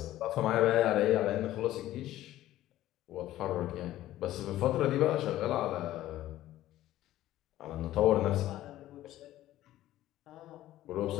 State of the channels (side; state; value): right; quieter; 14.4 dB